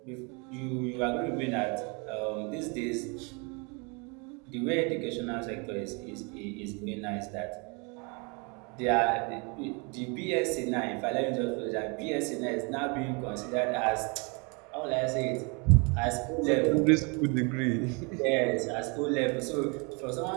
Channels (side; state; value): left; quieter; 32.0 dB